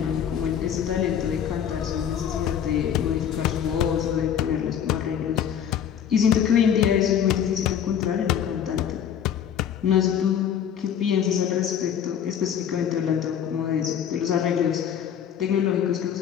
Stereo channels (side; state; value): right; quieter; 8.8 dB